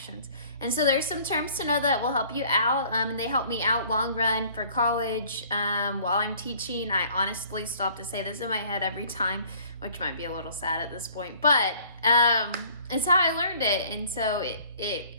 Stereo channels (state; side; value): inverted; both; correlation -0.54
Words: And so there's some terms to know that will help you out, and they help me out long run for college. While I'm teaching, I honestly still have to say this in my head every time, which might be a little sad at this point, but it's how I learned it, and so